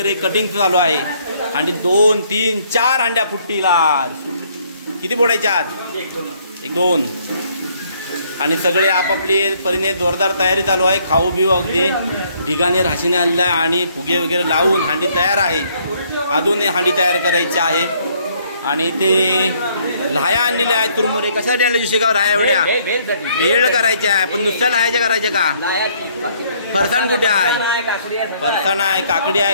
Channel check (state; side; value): inverted; both; correlation -0.65